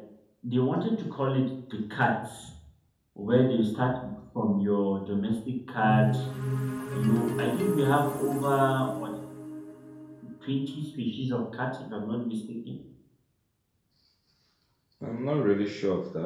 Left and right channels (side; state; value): both; identical; correlation 1.00